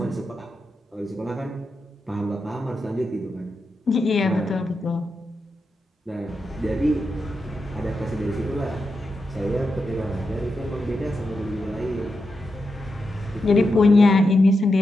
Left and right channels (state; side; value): normal; both; correlation 0.87